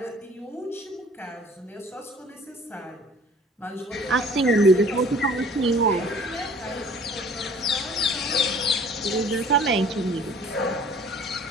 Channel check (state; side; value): normal; both; correlation 0.51